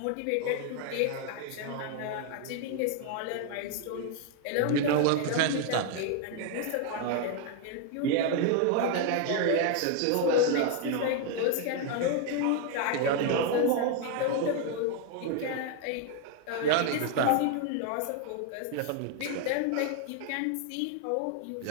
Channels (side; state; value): both; different; correlation 0.00